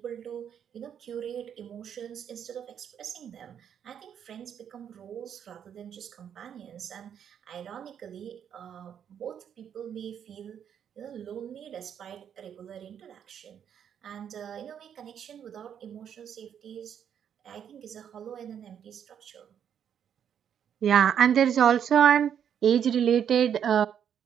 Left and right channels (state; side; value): quieter; left; 8.7 dB